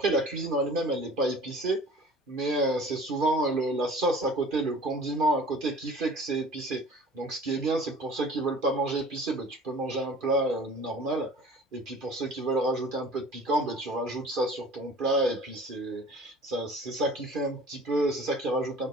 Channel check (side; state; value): both; normal; correlation 0.45